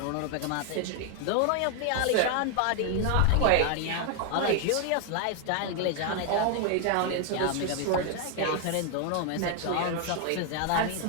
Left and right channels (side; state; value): both; different; correlation 0.00